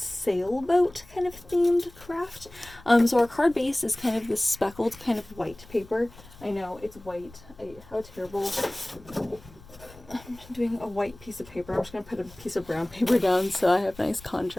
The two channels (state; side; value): noise; left; rumble, 21 dB below the sound